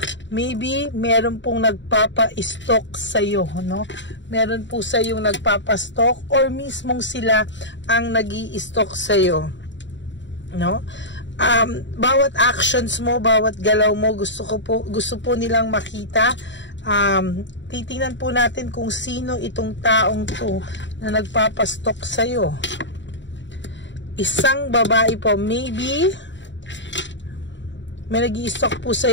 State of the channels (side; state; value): right; late; 0.53 ms